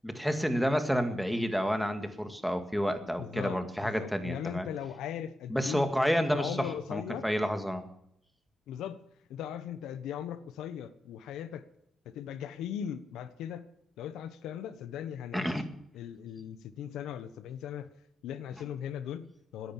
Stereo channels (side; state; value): both; normal; correlation 0.87